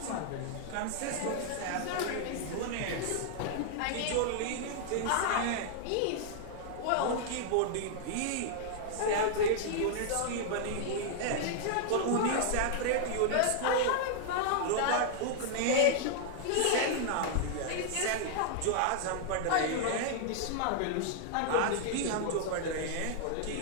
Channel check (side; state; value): both; different; correlation -0.01